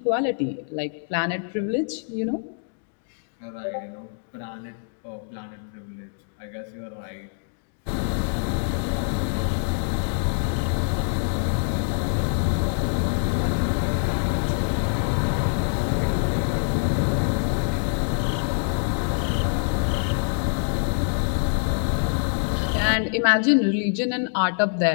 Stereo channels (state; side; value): silent; right; digital silence